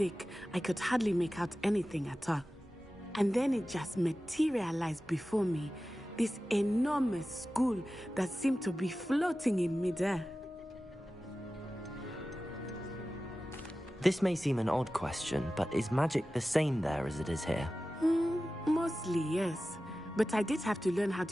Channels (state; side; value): normal; both; correlation 0.95